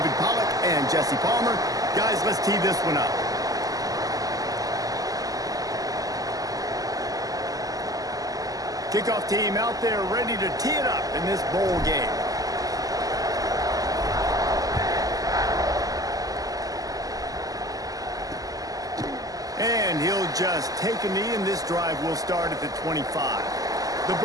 Pollack and Jesse Palmer. Guys, let's tee this one up. Kickoff team out there ready to tee it up in this bowl game. And he'll just take a knee, and this drive will start at the 25. The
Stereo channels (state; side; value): late; left; 0.17 ms